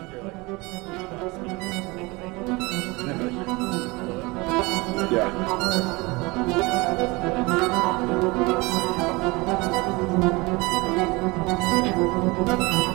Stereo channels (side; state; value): left; quieter; 24.3 dB